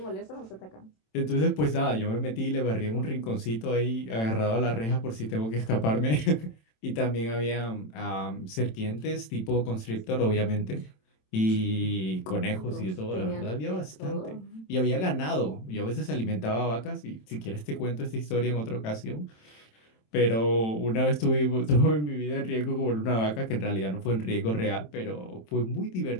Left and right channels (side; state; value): right; late; 27 ms